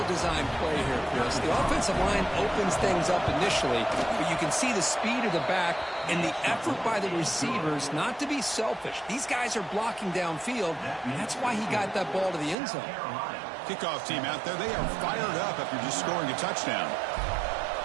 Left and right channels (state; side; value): drops out; left; at 12.6 s